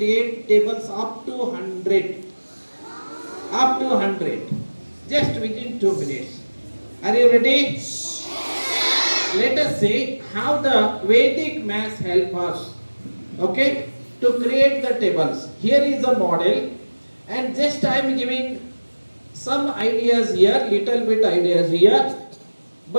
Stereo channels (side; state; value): both; inverted; correlation -1.00